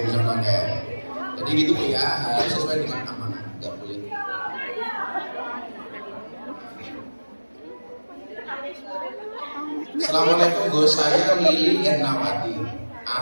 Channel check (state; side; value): inverted; both; correlation -1.00